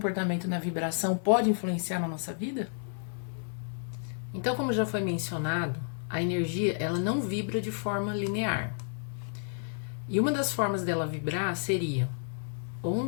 na vibração pode influenciar na nossa vida? Então, como já foi mencionado, a energia ela não vibra de forma linear. E uma das formas dela vibrar seria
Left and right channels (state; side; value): silent; right; 57 dB below the other